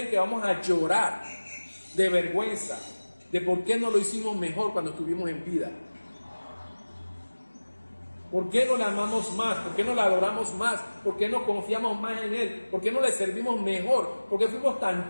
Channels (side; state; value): both; inverted; correlation -1.00